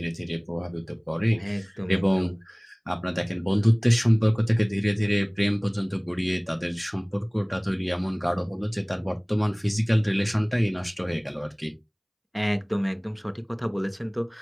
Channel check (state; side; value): identical; both; correlation 1.00